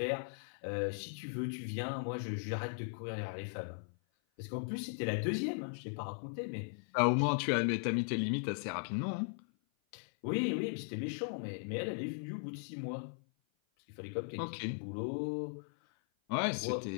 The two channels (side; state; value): right; silent; 52 dB below the other